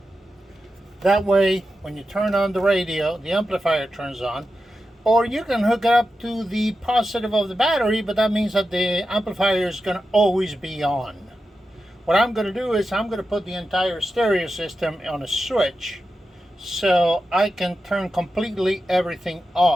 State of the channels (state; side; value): normal; both; correlation 0.90